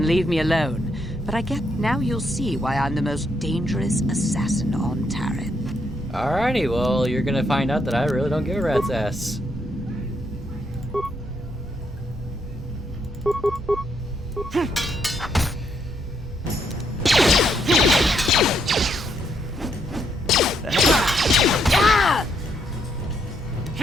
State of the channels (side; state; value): both; normal; correlation 0.75